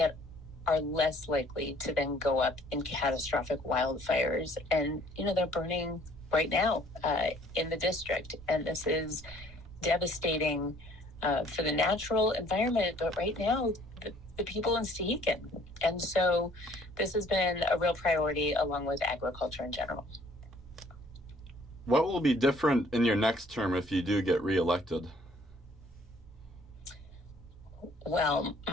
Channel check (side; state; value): both; normal; correlation 0.58